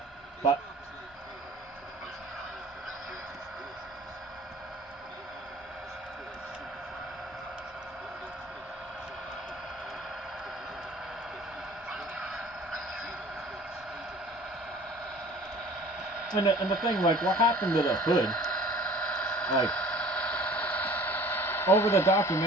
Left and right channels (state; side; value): normal; both; correlation 0.48